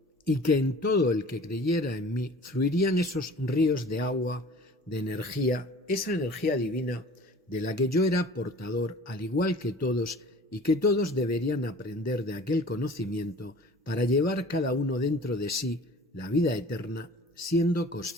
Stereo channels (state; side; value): normal; both; correlation 0.45